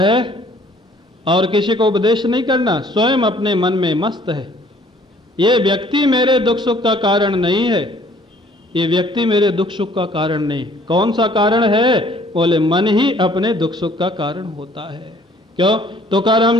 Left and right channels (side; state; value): both; normal; correlation 0.58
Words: और किसी को उपदेश नहीं करना, स्वयं अपने मन में मस्त है। ये व्यक्ति मेरे दुख सुख का कारण नहीं है, ये व्यक्ति मेरे दुख सुख का कारण नहीं। कौन सा कारण है? बोले मन ही अपने दुख सुख का कारण होता है। क्यों?